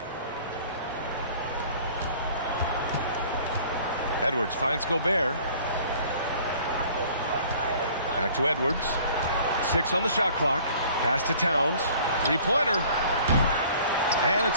Edwards finds Gobert. Back to Edwards. 6 on the shot clock. Pass to Towns. 3-pointer. And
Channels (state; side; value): inverted; both; correlation -0.51